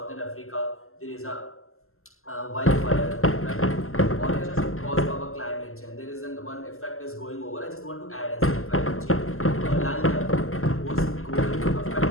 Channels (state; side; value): late; right; 0.62 ms